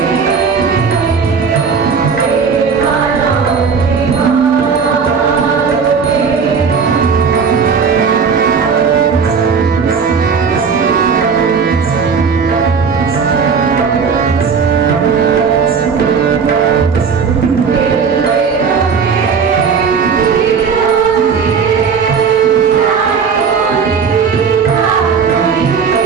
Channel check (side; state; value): left; quieter; 5.9 dB